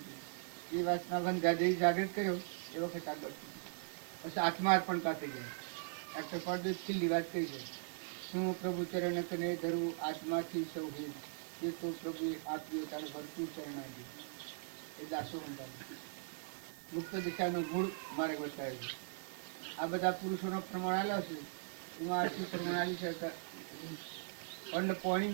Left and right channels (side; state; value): left; silent; 51 dB below the other